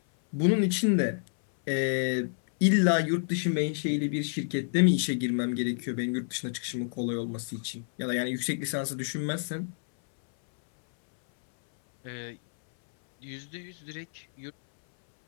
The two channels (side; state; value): right; silent; 59 dB below the other